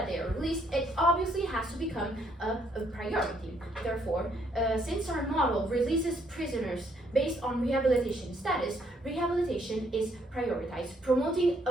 they are released, it obviously has to become a priority. Therefore, since our model releases prisoners based on rehabilitation status, rehabilitation is prioritized, promoting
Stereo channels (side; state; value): both; normal; correlation 0.70